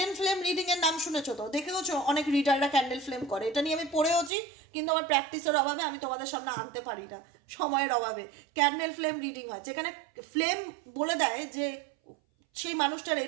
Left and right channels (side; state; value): left; drops out; at 4.3 s